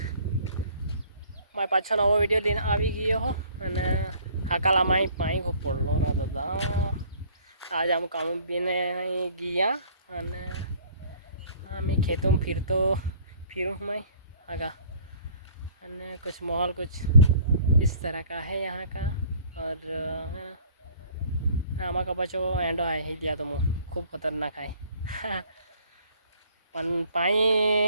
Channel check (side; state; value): both; inverted; correlation -0.55